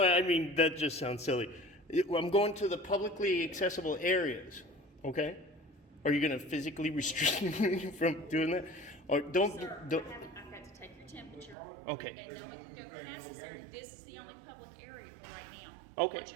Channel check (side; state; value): left; drops out; at 11.6 s